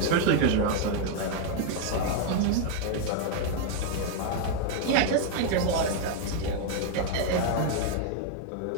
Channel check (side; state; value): both; different; correlation 0.00